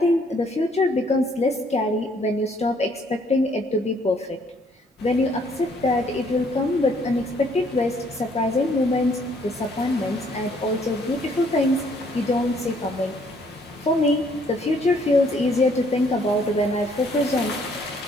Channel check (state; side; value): normal; both; correlation 0.65